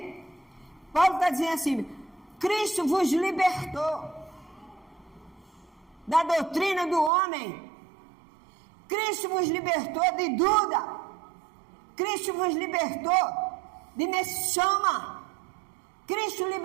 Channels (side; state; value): left; drops out; at 7.1 s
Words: Paulo está dizendo assim, Cristo vos libertou da doutrina do homem. Cristo vos libertou de Duda. Cristo vos libertou de Meshama. Cristo